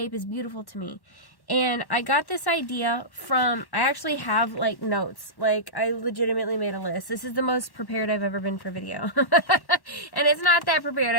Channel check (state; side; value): late; right; 1.1 ms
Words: is beautiful to me. And I got this idea I actually have, like, notes. Like, I legitimately made a list. This is the most prepared I've ever been for video. And it's not that prepared.